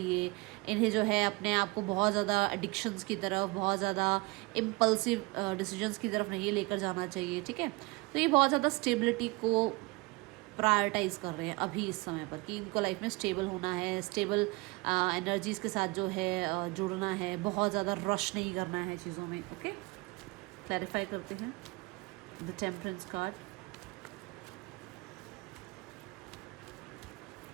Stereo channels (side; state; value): left; quieter; 25.4 dB